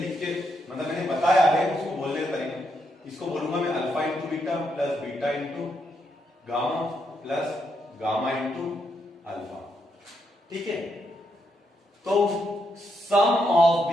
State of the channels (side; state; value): both; normal; correlation 0.79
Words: के, मतलब मैंने बताया है उसको बोलने का तरीका, इसको बोलूंगा मैं alpha into beta plus beta into gamma plus gamma into alpha. ठीक है, तो sum of